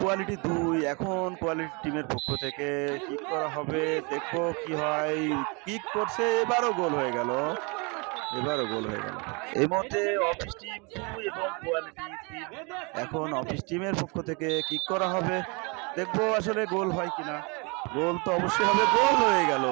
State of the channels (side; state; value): left; quieter; 30.9 dB